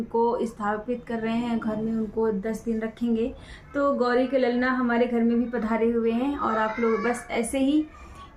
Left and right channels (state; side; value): identical; both; correlation 1.00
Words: स्थापित कर रहे हैं घर में, उनको 10 दिन रखेंगे। तो गौरी के ललना हमारे घर में भी पधारे हुए हैं। और आप लोग बस ऐसे ही